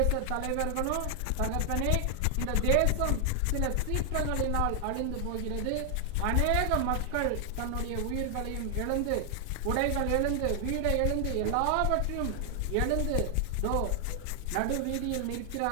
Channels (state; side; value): different; both; correlation 0.00